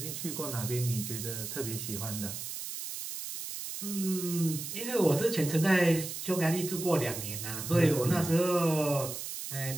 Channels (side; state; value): right; noise; hiss, 7 dB below the sound